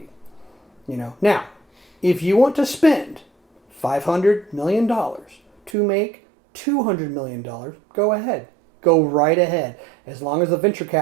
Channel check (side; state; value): left; drops out; at 5.8 s